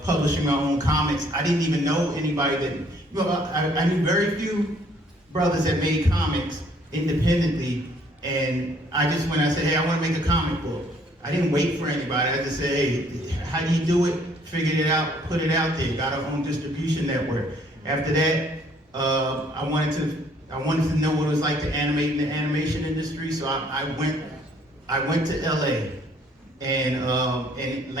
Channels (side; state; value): both; normal; correlation 0.62